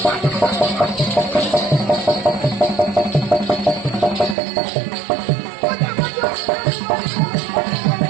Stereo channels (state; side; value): drops out; left; at 4.4 s